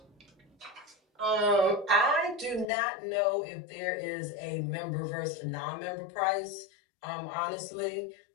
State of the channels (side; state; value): right; drops out; at 2.7 s